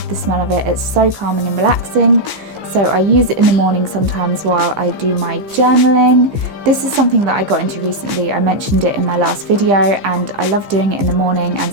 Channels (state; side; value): late; left; 15 ms